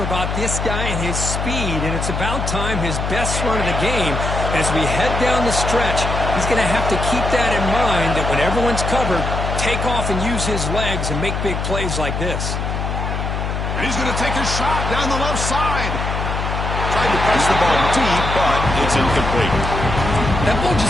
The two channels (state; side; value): noise; left; hum, 3 dB below the sound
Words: about this guy and his speed, and it's about time his best run of the game. And as we head down the stretch, he's going to have to keep that in mind, that when everyone's covered, take off and use his legs and make big plays like this. And he's going to take a shot down the left side. Tried to press the ball deep, but it's incomplete. That ball